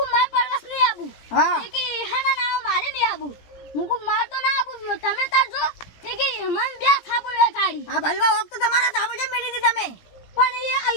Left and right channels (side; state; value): right; late; 18 ms